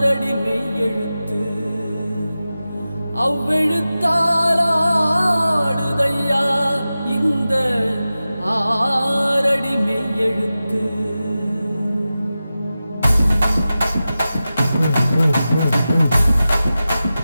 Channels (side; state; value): both; inverted; correlation -0.94